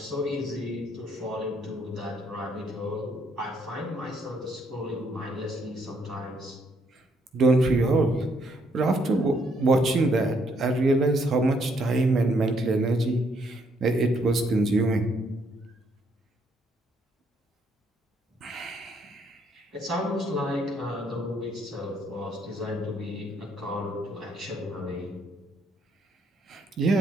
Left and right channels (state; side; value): normal; both; correlation 0.71